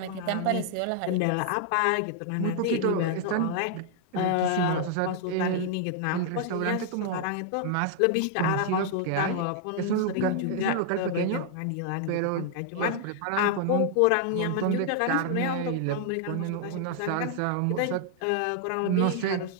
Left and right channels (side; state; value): both; different; correlation 0.00